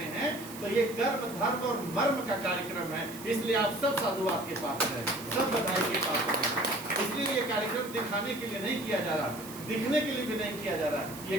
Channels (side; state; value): right; noise; hiss, 15 dB below the sound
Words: हैं। तो ये कर्म, धर्म और मर्म का कार्यक्रम है। इसलिए आप सब साधुवाद के पात्र हैं, सब बधाई के पात्र हैं। इसलिए ये कार्यक्रम दिखाने के लिए नहीं किया जा रहा, दिखने के लिए भी नहीं किया जा रहा। ये